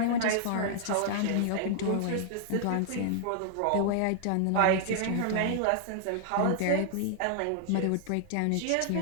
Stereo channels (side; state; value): both; different; correlation -0.01